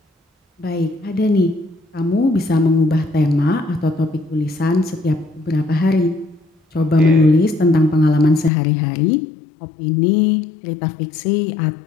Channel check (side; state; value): right; drops out; at 8.5 s